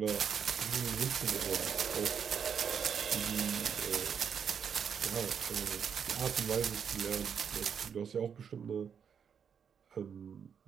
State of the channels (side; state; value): left; quieter; 7.3 dB